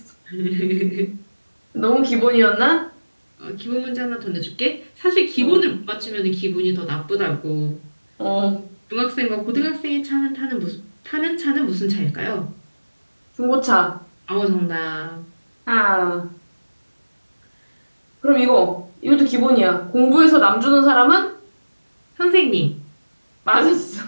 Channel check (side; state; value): both; inverted; correlation -1.00